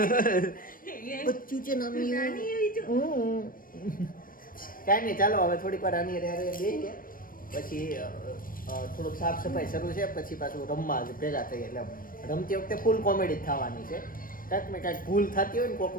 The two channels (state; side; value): late; right; 0.41 ms